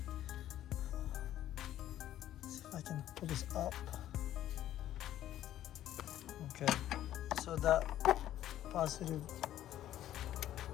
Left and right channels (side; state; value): right; quieter; 12.5 dB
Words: See if I can pull this up. Okay, so that positive